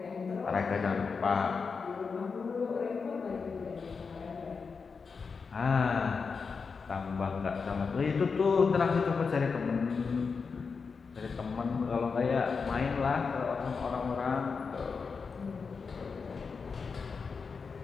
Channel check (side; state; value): right; quieter; 5.2 dB